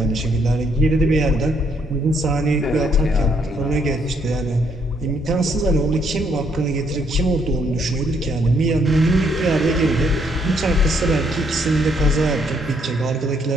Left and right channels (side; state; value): both; normal; correlation 0.71